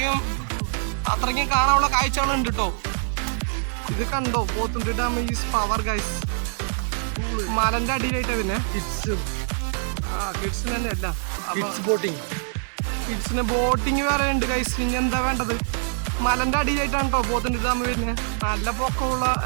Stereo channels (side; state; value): left; silent; digital silence